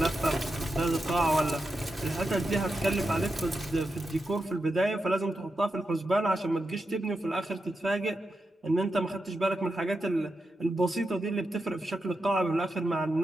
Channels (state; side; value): normal; both; correlation 0.88